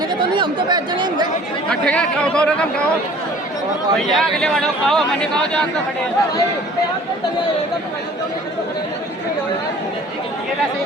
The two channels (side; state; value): both; normal; correlation 0.50